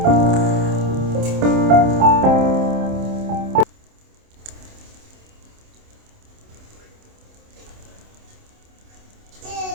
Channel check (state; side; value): late; left; 27 ms